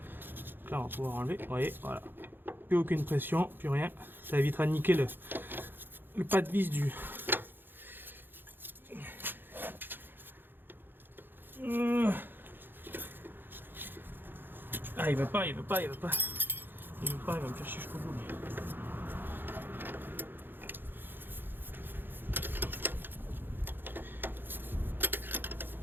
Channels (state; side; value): late; left; 0.097 ms